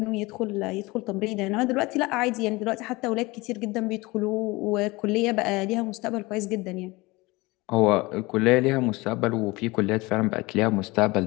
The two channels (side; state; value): right; quieter; 22.7 dB